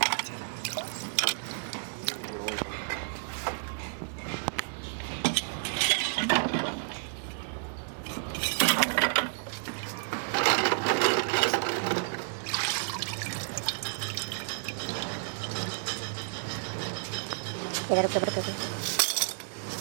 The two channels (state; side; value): silent; left; digital silence